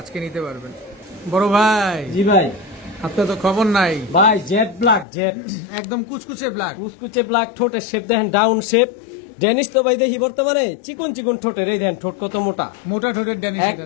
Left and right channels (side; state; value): right; drops out; at 5.1 s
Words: আজকে নিতে পারবেন। বড় ভাই, জি ভাই। আপনার তো খবর নাই। ভাই জেড ব্ল্যাক, জেড একদম কুচকুচে ব্ল্যাক। কুচকুচে ব্ল্যাক, ঠোঁটের শেপ দেখেন ডাউন শেপ। ডেনিস তো ভাই দেখি বর্তমানে চিকন চিকন ঠোঁটের, এই দেন ঠোঁট কত মোটা, মোটা ঠোঁটের ড্যানিশ।